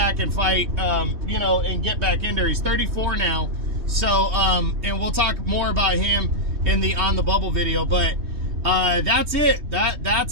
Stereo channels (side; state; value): left; late; 3.2 ms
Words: and fight, you know, and get back in there. He's 34 now. So, and we'll talk more about him in the On the Bubble video, but that's it.